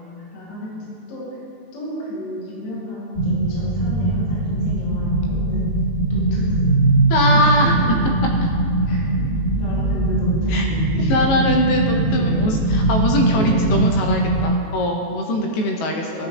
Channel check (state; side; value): late; right; 18 ms